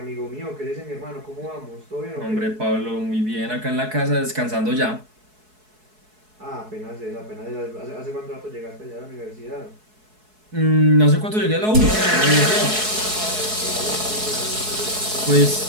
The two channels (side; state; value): left; late; 4.7 ms